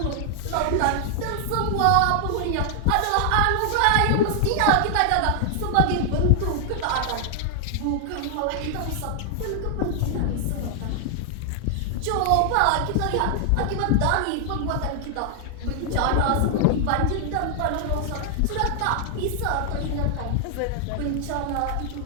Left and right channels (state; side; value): different; both; correlation 0.00